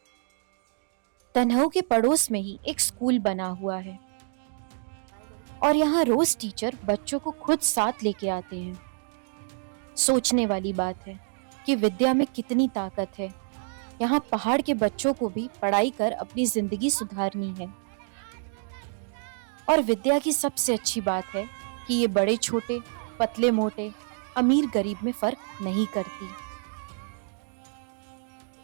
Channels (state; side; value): silent; left; digital silence